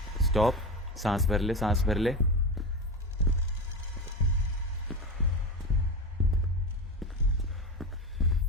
stop. सांस भर ले, सांस भर ले.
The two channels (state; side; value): normal; both; correlation 0.23